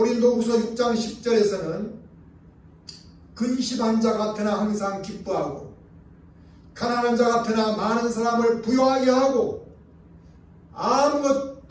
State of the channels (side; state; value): both; identical; correlation 1.00